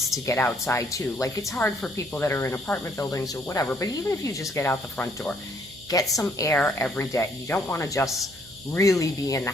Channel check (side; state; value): right; noise; hum, 23 dB below the sound